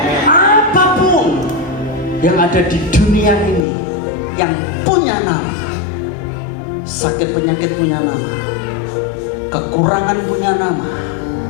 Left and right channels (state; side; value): drops out; right; at 3.7 s